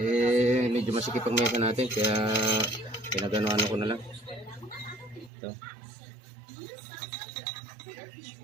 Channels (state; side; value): drops out; left; at 5.3 s